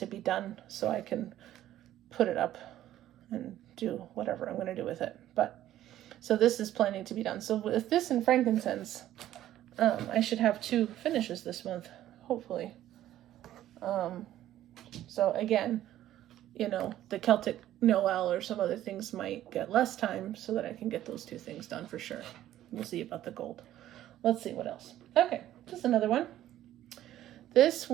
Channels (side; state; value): left; quieter; 13.0 dB